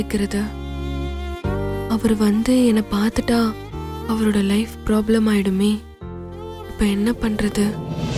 அவர் வந்து என்னை பார்த்துட்டா அவரோட லைஃப் ப்ராப்ளம் ஆயிடுமே. இப்ப என்ன பண்றது?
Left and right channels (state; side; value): identical; both; correlation 1.00